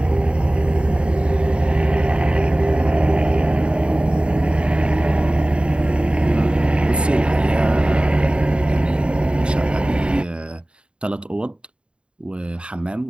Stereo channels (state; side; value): late; left; 0.054 ms